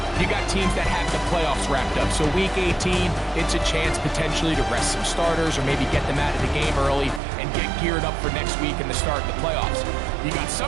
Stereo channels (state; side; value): drops out; left; at 7.2 s